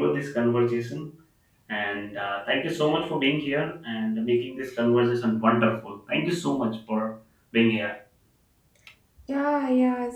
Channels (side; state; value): both; identical; correlation 1.00